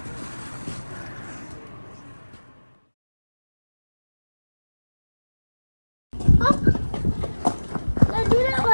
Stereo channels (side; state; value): both; inverted; correlation -1.00